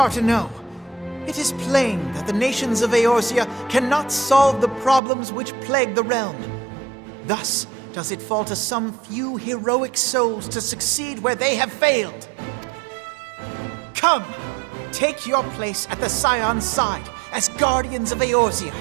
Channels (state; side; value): drops out; left; at 5.0 s